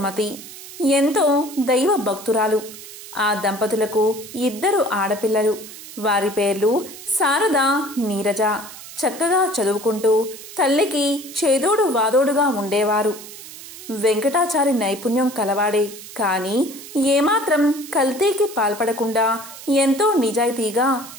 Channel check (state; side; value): noise; right; hiss, 15 dB below the sound